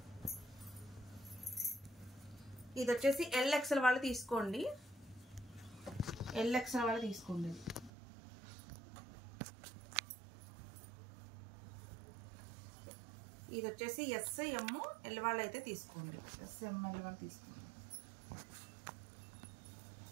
ఇది వచ్చేసి ఎల్ ఎక్సెల్ వాళ్ళు తీసుకోండి. ఎల్ ఎక్సెల్ వాళ్ళు తీసుకోండి. ఇది వచ్చేసి ఎస్, ఎమ్, ఎల్ వాళ్ళు అయితే తీసుకోండి. ఎస్, ఎమ్, ఎల్ వాళ్ళు తీసుకోండి.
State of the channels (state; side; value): drops out; left; at 7.9 s